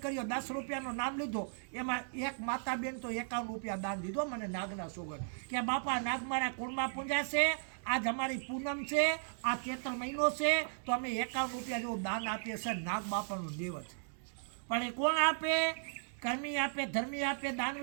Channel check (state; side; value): silent; left; digital silence